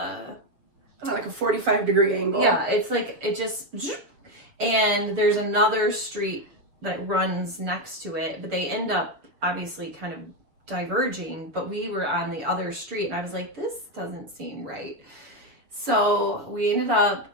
like a 45-degree angle. Yeah, it's like it just, and there's another street that runs next to it, but they end up obviously kind of diverging. But we were on the other street, and I was like, this doesn't seem right. So we ended up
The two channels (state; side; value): late; left; 7.1 ms